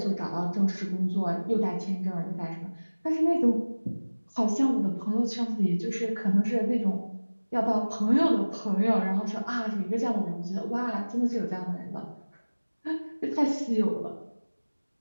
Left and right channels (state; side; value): inverted; both; correlation -1.00